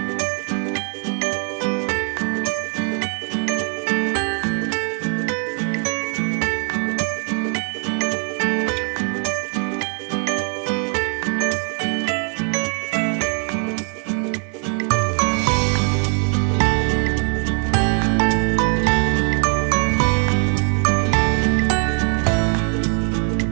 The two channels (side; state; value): left; quieter; 39.9 dB